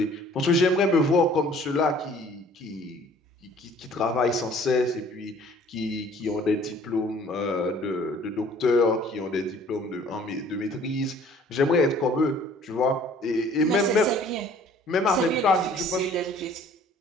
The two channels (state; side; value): normal; both; correlation 0.54